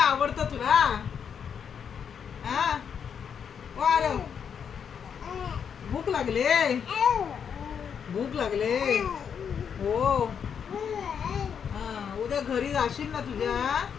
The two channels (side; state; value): right; quieter; 7.4 dB